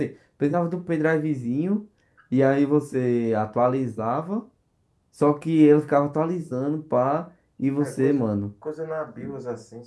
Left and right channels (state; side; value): identical; both; correlation 1.00